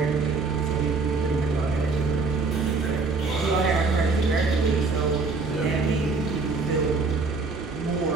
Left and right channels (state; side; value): quieter; left; 4.1 dB